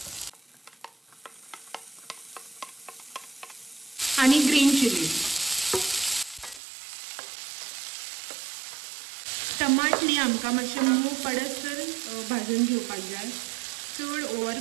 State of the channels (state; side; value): drops out; left; at 6.6 s